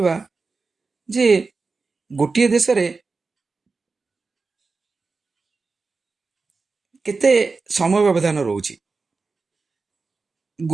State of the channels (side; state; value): left; quieter; 4.2 dB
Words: ଯେ ଗୋଟିଏ ଦେଶରେ କେତେ ସମୟ ବ୍ୟବଧାନ ରହୁଛି।